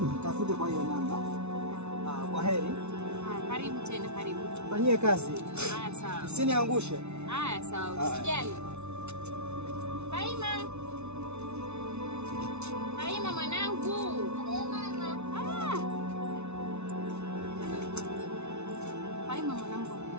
Tafute kwa hiyo namba. Kwa heri. Karibu tena, karibu. Fanyie kazi. Haya sawa. Usiniangushe. Haya sawa, usijali. Fahima. Fahima mwanangu. Fahima mwanangu.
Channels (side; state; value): left; late; 0.81 ms